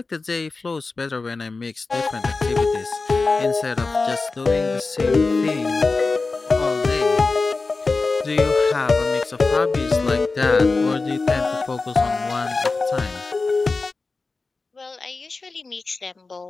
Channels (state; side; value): quieter; right; 3.9 dB